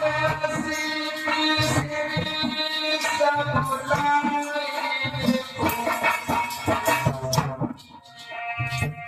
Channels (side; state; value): both; identical; correlation 1.00